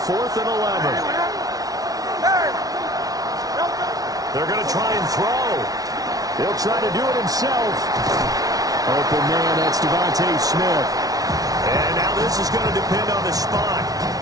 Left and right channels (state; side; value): late; left; 0.18 ms